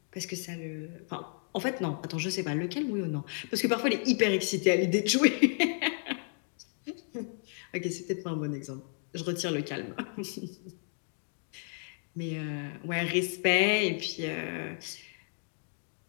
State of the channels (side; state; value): right; silent; 56 dB below the other